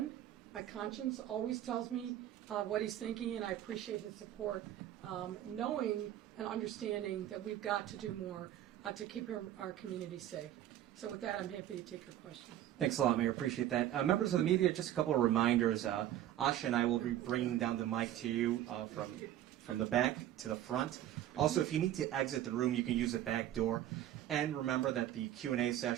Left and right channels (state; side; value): quieter; left; 12.4 dB